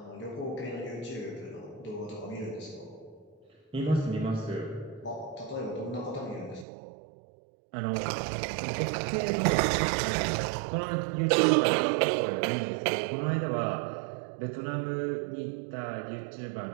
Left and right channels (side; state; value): left; drops out; at 6.7 s